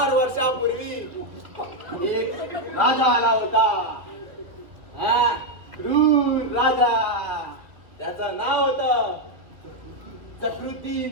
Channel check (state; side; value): late; left; 1.8 ms